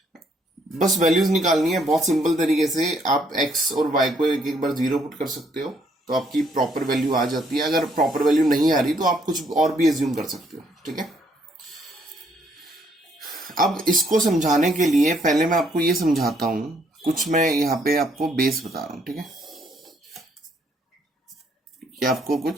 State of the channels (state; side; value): normal; both; correlation 0.69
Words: बस वैल्यूज निकालनी है बहुत सिंपल तरीके से. आप x और y को एक बार 0 पुट कर सकते हो तो आपकी प्रॉपर वैल्यू आ जाती है. अगर प्रॉपर वैल्यू नहीं आ रही तो आप कुछ और भी एज्यूम कर सकते हो. ठीक है, अब इसको समझाने के लिए पहले मैं आपको ये समझाता हूं. कुछ मैं यहाँ पे आपको बेस बता रहा हूं. ठीक है, ये आपको